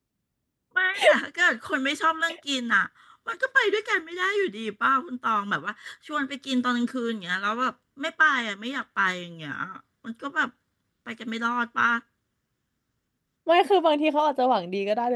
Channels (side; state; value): both; identical; correlation 1.00